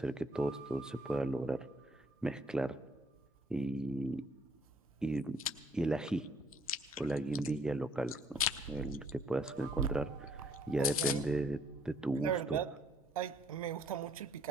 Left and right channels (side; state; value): both; normal; correlation 0.64